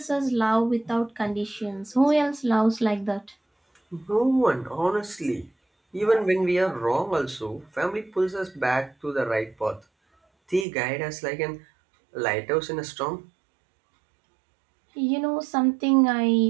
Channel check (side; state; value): left; drops out; at 10.7 s